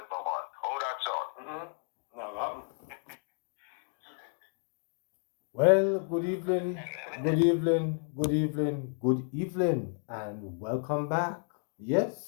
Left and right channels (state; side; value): silent; right; 56 dB below the other